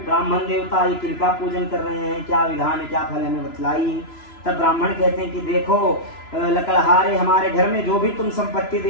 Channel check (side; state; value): right; late; 3.0 ms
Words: ब्राह्मण देवता, ये किनका पूजन कर रहे हैं, क्या विधान है, क्या फल है, हमें बतलाइए। तब ब्राह्मण कहते हैं कि देखो लकड़हारे, हमारे घर में जो भी तुम संपत्ति